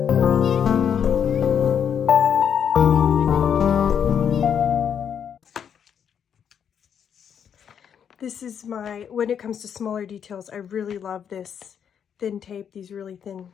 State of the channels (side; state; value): right; quieter; 8.1 dB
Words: This is when it comes to smaller details, I really love this thin tape, these really thin